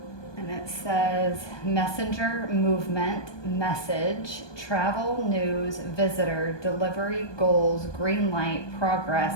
And it says messenger, movement, message, travel, news, visitor, delivery, goals, green light, progress,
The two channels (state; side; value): late; right; 1.2 ms